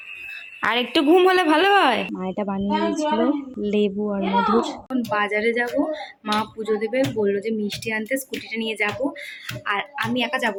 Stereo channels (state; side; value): identical; both; correlation 1.00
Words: আর একটু ঘুম হলে ভালো হয়। মা এটা বানিয়ে দিয়েছিল লেবু আর মধুর। এখন বাজারে যাব, মা পুজো দেবে, বললো যে মিষ্টি আনতে, স্কুটিটা নিয়ে যাব। আর আমি একা যাব